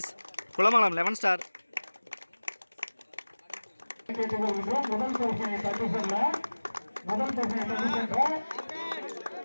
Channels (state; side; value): inverted; both; correlation -1.00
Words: Kulamangalam 11 star.